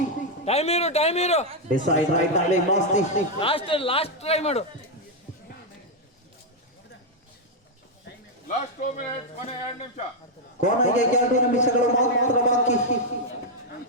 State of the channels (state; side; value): normal; both; correlation 0.00